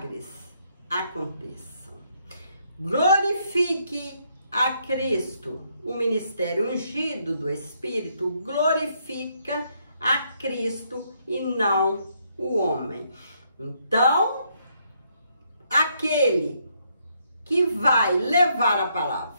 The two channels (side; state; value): both; inverted; correlation -0.73